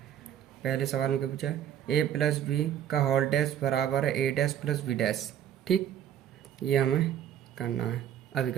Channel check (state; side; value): quieter; left; 10.1 dB